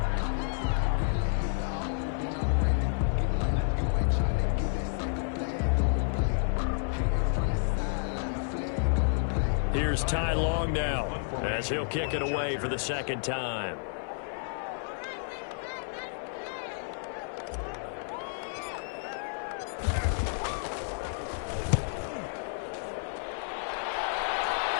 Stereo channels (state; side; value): silent; right; 57 dB below the other